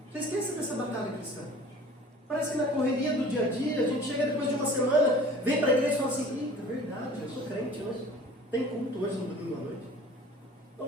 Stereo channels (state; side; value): normal; both; correlation 0.45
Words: Você esquece dessa batalha cristã. Parece que na correria do dia a dia, a gente chega depois de uma semana, vem para a igreja e fala assim, eita, verdade, eu sou crente, mas tem culto hoje no domingo à noite.